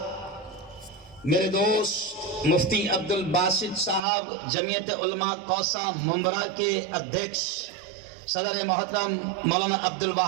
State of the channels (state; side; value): drops out; left; at 4.0 s